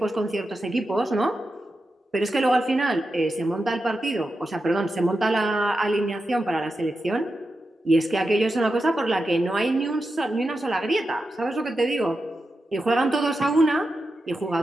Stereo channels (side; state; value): both; normal; correlation 0.89